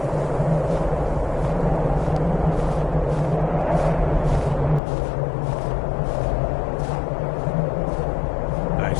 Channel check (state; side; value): drops out; right; at 4.8 s